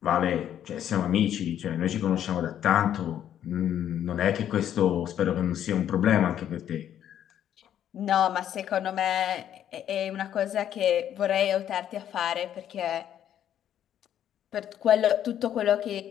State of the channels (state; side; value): quieter; right; 10.4 dB